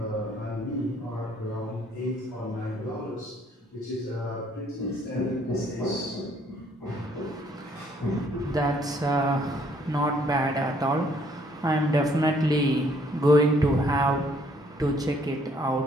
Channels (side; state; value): both; normal; correlation 0.64